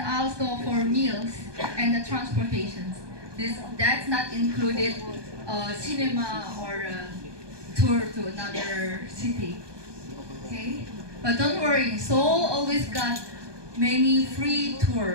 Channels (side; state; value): left; late; 1.2 ms